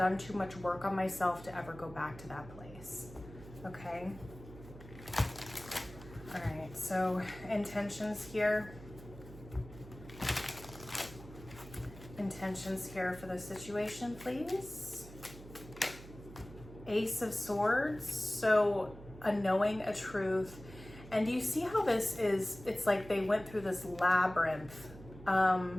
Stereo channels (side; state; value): right; noise; hum, 16 dB below the sound